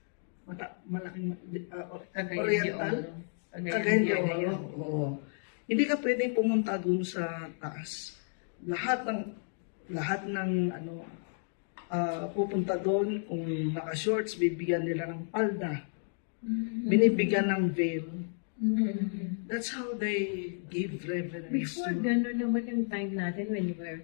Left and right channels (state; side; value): silent; right; digital silence